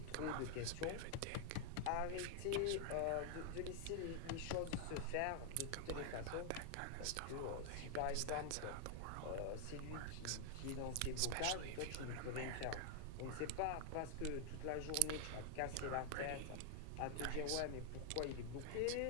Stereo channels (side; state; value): both; different; correlation 0.00